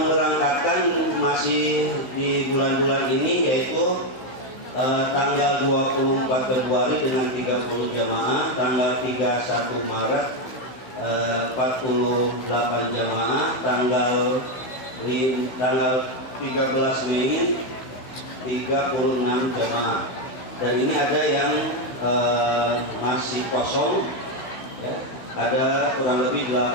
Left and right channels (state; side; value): late; right; 16 ms